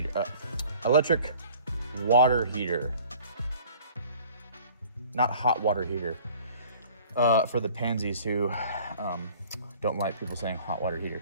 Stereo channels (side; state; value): both; inverted; correlation -0.50